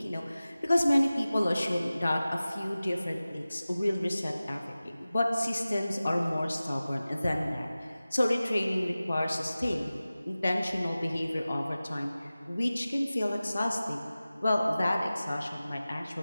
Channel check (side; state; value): both; inverted; correlation -0.97